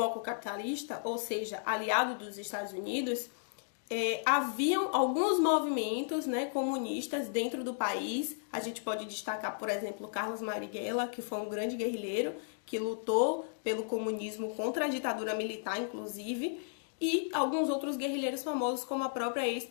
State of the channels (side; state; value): right; silent; digital silence